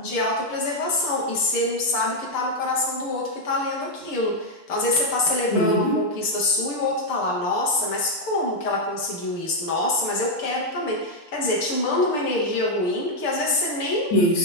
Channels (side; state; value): right; late; 6.8 ms